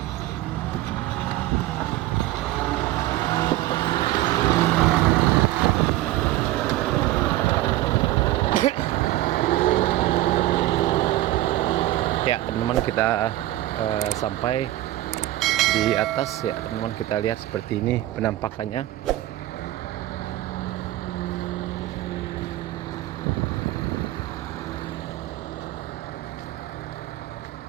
Ya teman-teman, kita sampai di atas ya teman-teman. Kita lihat seperti ini penampakannya.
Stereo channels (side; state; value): left; quieter; 15.8 dB